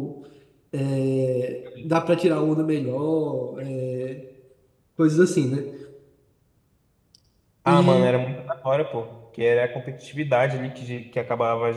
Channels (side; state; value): both; identical; correlation 1.00